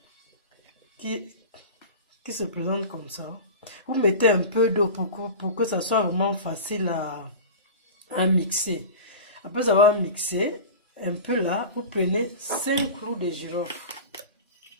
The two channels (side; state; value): both; inverted; correlation -0.32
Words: Qui se présente comme ça. Vous mettez un peu d'eau pour que ça soit vraiment facile à mixer. Après avoir mixé, un peu là, vous prenez 5 clous de girofle.